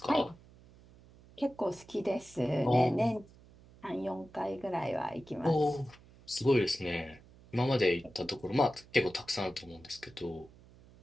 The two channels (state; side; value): noise; right; hum, 24 dB below the sound